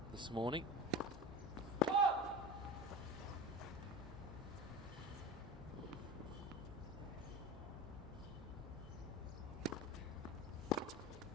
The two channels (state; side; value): normal; both; correlation 0.31